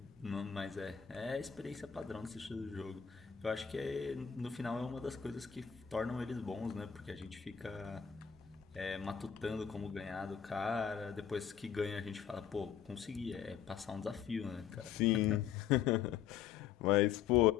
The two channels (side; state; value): right; quieter; 8.3 dB